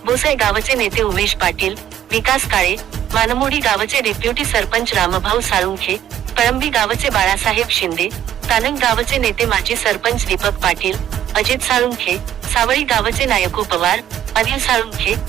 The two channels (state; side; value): quieter; left; 11.1 dB